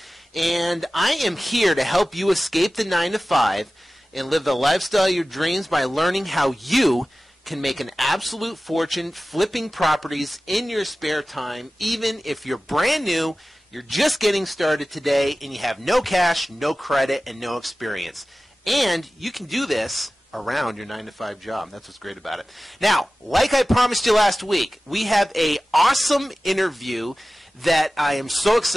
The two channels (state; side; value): normal; both; correlation 0.96